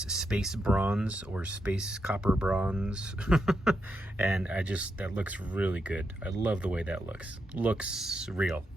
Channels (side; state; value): both; normal; correlation 0.83